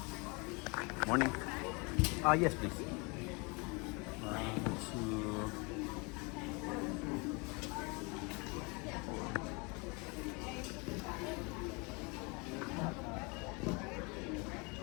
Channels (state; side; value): quieter; right; 29.6 dB